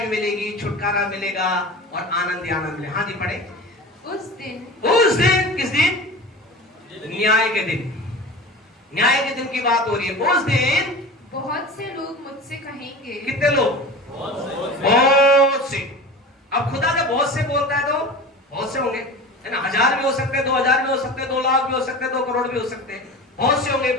मिलेगी, छुटकारा मिलेगा और आनंद ही आनंद मिलेगा। हाँ जी, पढ़े। उस दिन किस दिन? न्याय के दिन। न्याय के दिन की बात हो रही है। उस दिन बहुत से लोग मुझसे कहेंगे। कितने लोग? बहुत से। अब खुदा जब बहुत से बोलता है तो बहुत से होंगे, है ना। 1000 भी हो सकते हैं, 2000 भी हो सकते हैं, 2 लाख भी हो सकते हैं, 2 करोड़ भी हो सकते हैं। बहुत से होंगे।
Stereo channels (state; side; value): normal; both; correlation 0.34